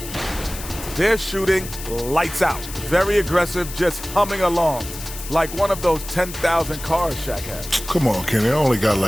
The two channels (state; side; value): noise; left; hiss, 11 dB below the sound